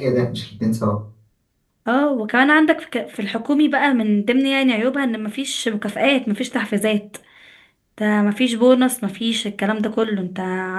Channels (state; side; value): identical; both; correlation 1.00